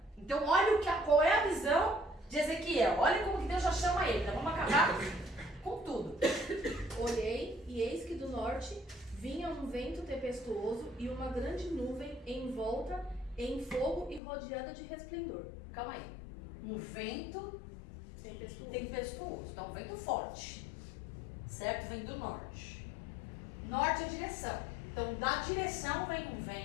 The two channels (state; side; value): drops out; right; at 14.2 s